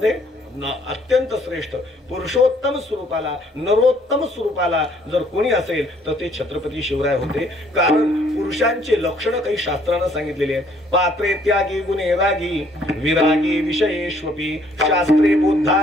अत्यंत श्रेष्ठ पुरुषोत्तम स्वरूपाला नरोत्तम स्वरूपाला जर कोणी असेल तर ते छत्रपती शिवराय होते. कारण पुरुषांचे लक्षण काही शास्त्रानं सांगितलेली आहेत. पात्रे त्यागी गुणे रागी विरागी विषयेष्वपी शास्त्रे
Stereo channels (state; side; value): normal; both; correlation 0.63